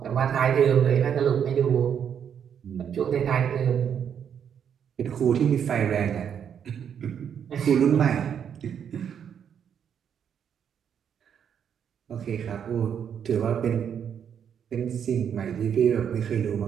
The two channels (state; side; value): quieter; left; 8.2 dB